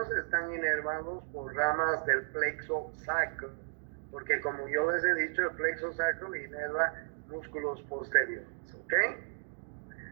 están inervados por ramas del plexo sacro, porque como yo les he dicho, el plexo sacro inerva músculos posteriores, ¿ok?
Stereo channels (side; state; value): left; silent; digital silence